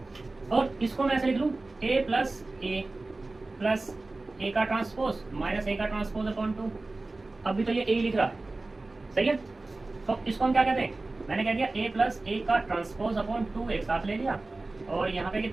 और इसको मैं ऐसे लिख लूं, ए प्लस ए का ट्रांसपोज माइनस ए का ट्रांसपोज अपॉन 2, अभी तो ये ए लिख रहा है, सही है। तो इसको हम क्या कहते हैं, मैंने कह दिया ए प्लस ए का ट्रांसपोज अपॉन 2 एक साथ ले लिया, और यहाँ पे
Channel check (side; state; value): left; quieter; 3.2 dB